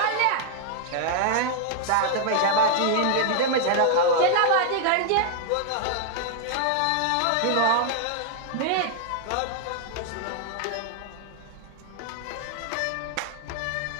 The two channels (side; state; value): both; different; correlation 0.00